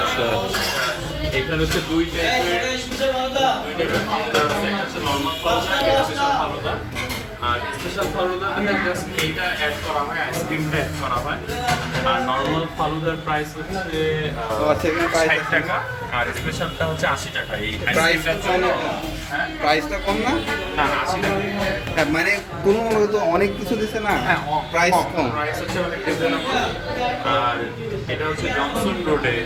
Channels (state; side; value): identical; both; correlation 1.00